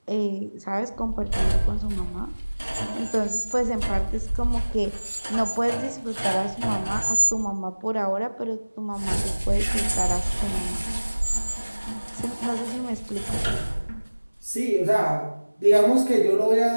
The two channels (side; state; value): both; inverted; correlation -1.00